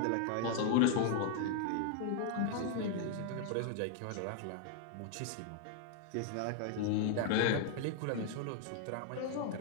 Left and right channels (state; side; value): different; both; correlation 0.00